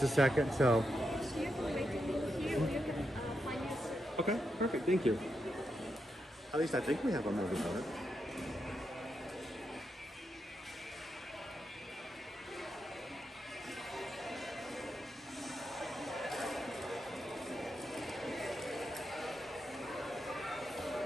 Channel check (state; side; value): normal; both; correlation 0.84